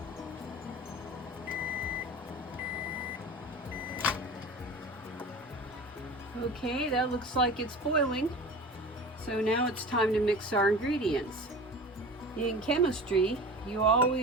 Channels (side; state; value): both; normal; correlation 0.36